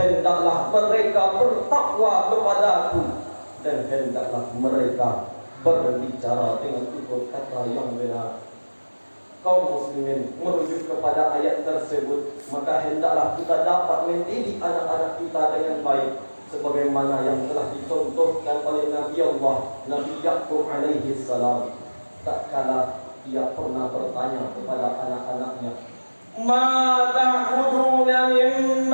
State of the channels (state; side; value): inverted; both; correlation -1.00